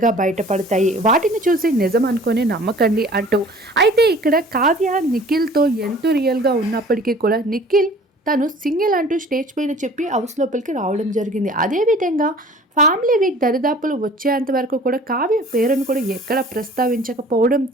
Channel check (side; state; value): both; normal; correlation 0.48